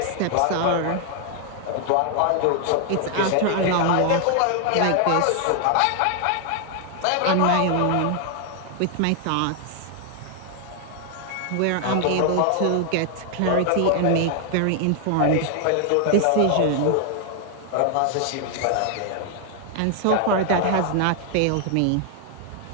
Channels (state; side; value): different; both; correlation 0.00